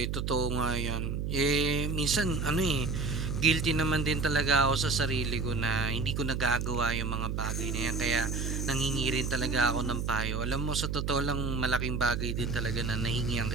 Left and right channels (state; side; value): noise; right; hum, 1 dB below the sound